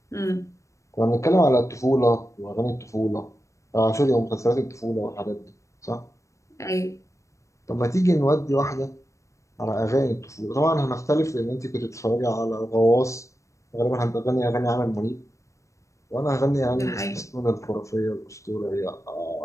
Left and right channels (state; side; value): late; right; 0.15 ms